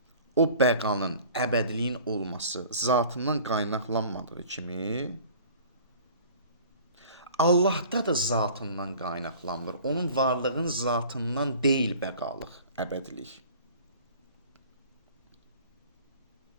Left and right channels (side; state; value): both; inverted; correlation -0.47